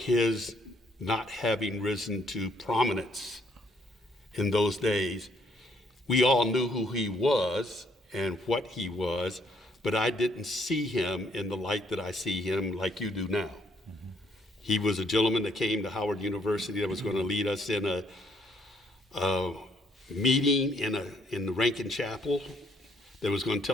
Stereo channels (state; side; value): normal; both; correlation 0.68